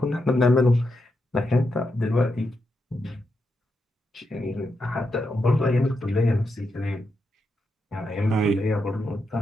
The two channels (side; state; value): both; normal; correlation 0.84